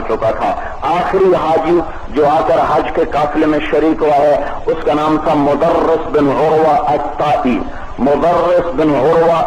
چکا تھا۔ آخری حاجی جو آ کر حج کے قافلے میں شریک ہوا ہے اس کا نام تھا مدرس بن عروہ الطائی۔ مدرس بن عروہ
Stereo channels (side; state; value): both; identical; correlation 1.00